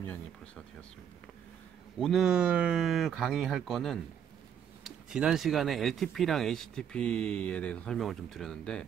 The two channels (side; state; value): left; quieter; 8.7 dB